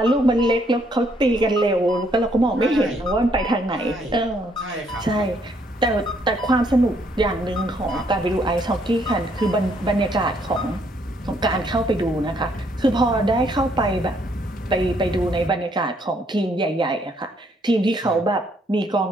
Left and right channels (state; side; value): normal; both; correlation 0.69